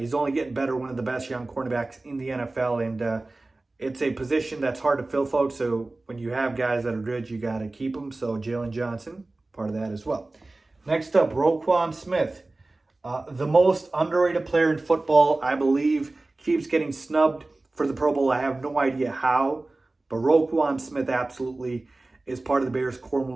only getting better, one of the best young cornerbacks in the NFL, and it's a position that's hard to fill, folks. So when you have guys that are good, you got to keep them. So Jalen Johnson, part of that as well. Next up, Roquan Smith, the most underrated player in football, I believe, keeps getting snubbed for the Pro Bowl. I have no idea how, but Roquan Smith absolutely is part of the Bears core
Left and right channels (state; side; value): quieter; left; 3.0 dB